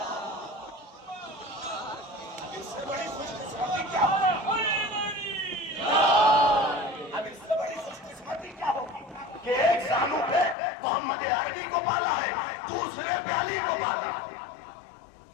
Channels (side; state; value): right; drops out; at 10.6 s